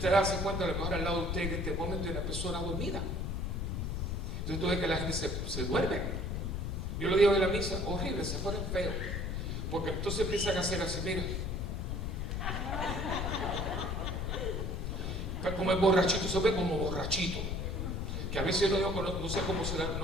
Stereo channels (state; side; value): noise; left; rumble, 2 dB below the sound